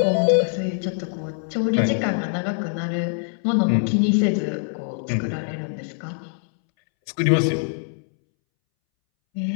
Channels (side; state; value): right; silent; 63 dB below the other